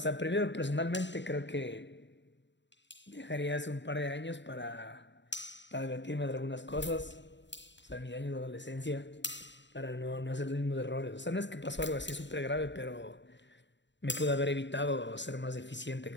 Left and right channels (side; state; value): right; late; 0.52 ms